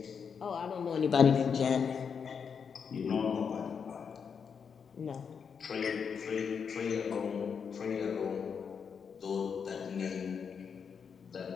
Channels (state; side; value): quieter; right; 6.5 dB